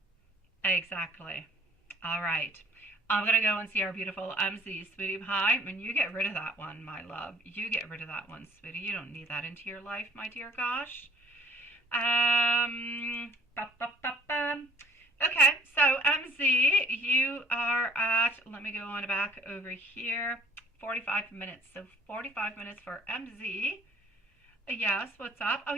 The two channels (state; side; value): normal; both; correlation 0.55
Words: Exactly. All right. I'm going to go and see our beautiful MZ, sweetie pie. And you get rid of that one, my love. You get rid of that one, sweetie. You don't need that into your life, my dear gosh. Okay, so MZ, you are at, let me go on back over here, 45 minutes. So 45 minutes for MZ. Yes, what's up? Oh,